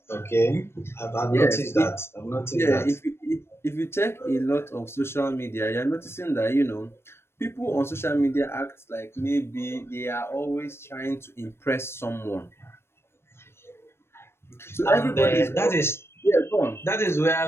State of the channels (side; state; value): right; late; 0.12 ms